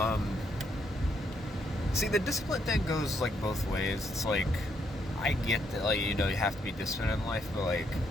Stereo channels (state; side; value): normal; both; correlation 0.75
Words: See, the discipline thing goes both ways. It's I get that you have to be disciplined in life, but